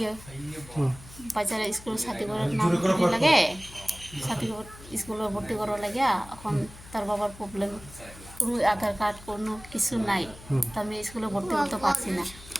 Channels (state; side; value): noise; left; hum, 18 dB below the sound